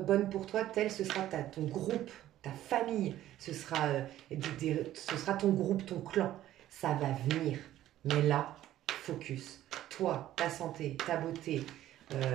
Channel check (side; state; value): left; quieter; 13.3 dB